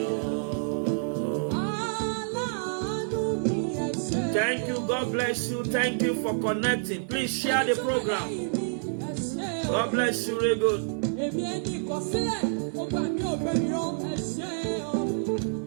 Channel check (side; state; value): left; silent; 59 dB below the other